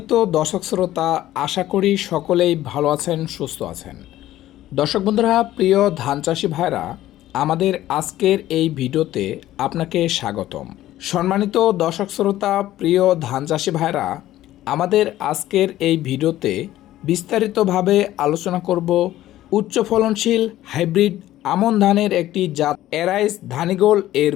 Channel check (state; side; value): quieter; right; 14.2 dB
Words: দর্শক শ্রোতা, আশা করি সকলেই ভালো আছেন, সুস্থ আছেন। দর্শক বন্ধুরা, প্রিয় ধান চাষি ভাইরা, আমাদের আজকের এই ভিডিওতে আপনাকে স্বাগতম। সম্মানিত দর্শক শ্রোতা, প্রিয় ধান চাষি ভাইরা, আমাদের আজকের এই ভিডিওতে বিস্তারিতভাবে আলোচনা করব উচ্চ ফলনশীল হাইব্রিড আমন ধানের একটি জাত এরাইস ধানিগোল এর